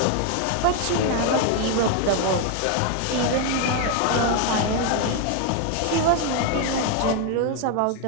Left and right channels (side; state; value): both; different; correlation 0.01